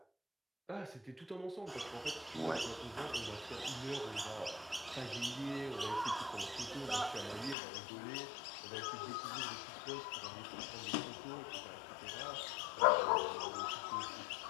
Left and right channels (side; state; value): right; drops out; at 7.6 s